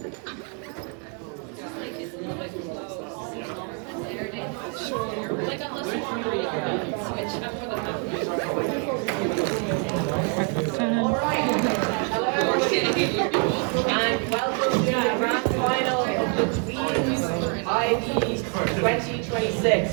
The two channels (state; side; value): quieter; left; 38.0 dB